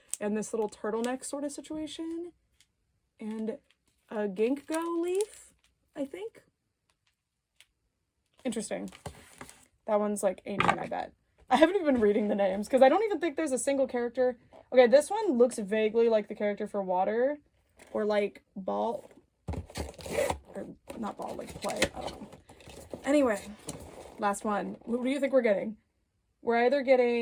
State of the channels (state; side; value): identical; both; correlation 1.00